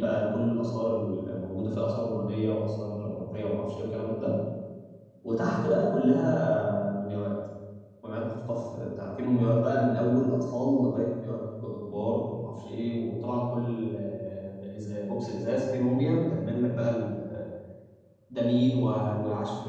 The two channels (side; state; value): both; identical; correlation 1.00